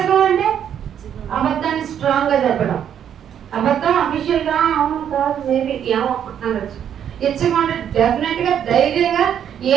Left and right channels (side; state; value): left; quieter; 9.2 dB